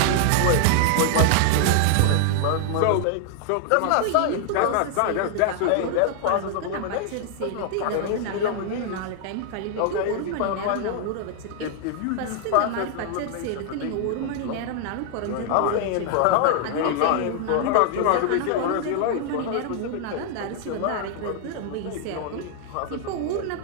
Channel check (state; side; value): different; both; correlation 0.00